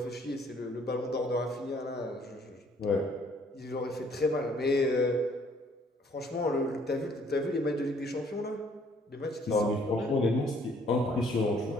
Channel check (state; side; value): normal; both; correlation 0.62